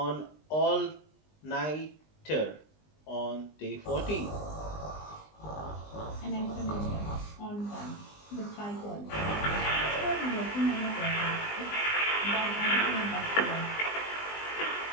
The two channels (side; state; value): right; late; 20 ms